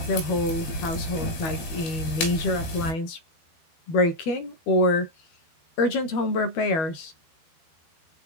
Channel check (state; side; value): late; right; 12 ms